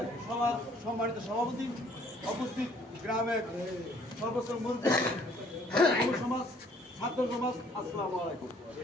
সবার সম্মানিত সভাপতি উপস্থিত, গ্রামের সর্বোচ্চ মুরব্বী, যুব সমাজ, ছাত্র সমাজ, আসসালামু আলাইকুম।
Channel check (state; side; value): normal; both; correlation 0.60